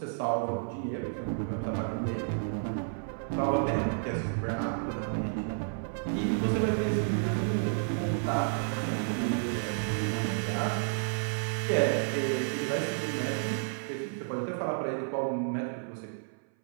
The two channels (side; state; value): left; silent; 57 dB below the other